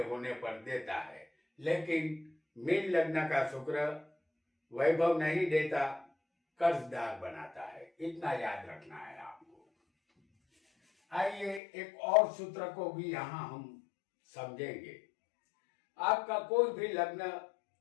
होने पर देता है। लेकिन मीन लग्न का शुक्र वैभव नहीं देता, कर्जदार बनाता है। इतना याद रखना है आपको। आइए एक और सूत्र को भी यहाँ हम समझेंगे। आपका कोई भी लग्न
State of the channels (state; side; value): drops out; right; at 11.6 s